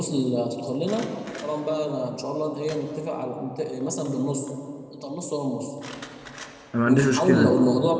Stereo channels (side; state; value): both; identical; correlation 1.00